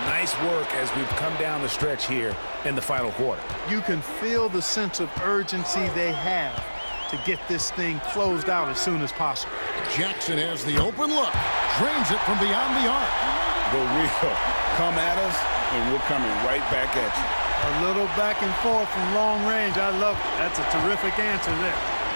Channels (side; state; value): both; inverted; correlation -1.00